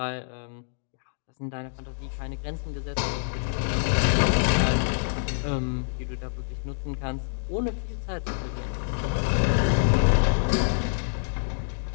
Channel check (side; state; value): right; silent; digital silence